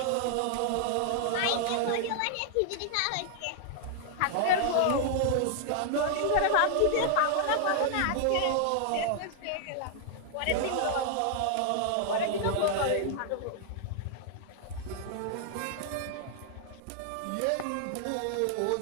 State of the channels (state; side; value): different; both; correlation 0.00